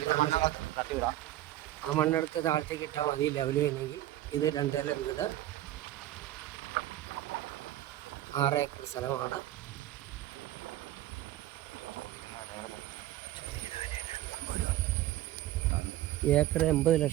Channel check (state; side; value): quieter; left; 14.1 dB